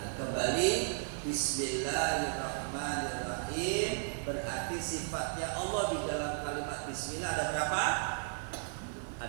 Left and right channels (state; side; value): silent; left; digital silence